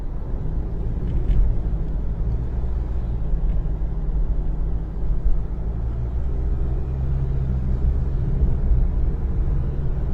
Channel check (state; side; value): identical; both; correlation 1.00